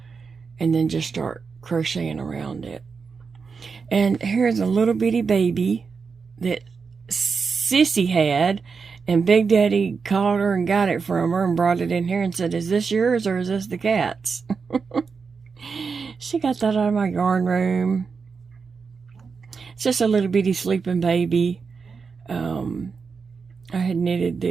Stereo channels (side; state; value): left; quieter; 5.3 dB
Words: and then just start crocheting around it. And here's a little bitty baby that Sissy had, and Big Daddy called her and got it from her and brought it in here and said, "Is this yours or is this the cat's?" She got that out of my yarn room. It's just a little bitty sleeping baby. I had knitted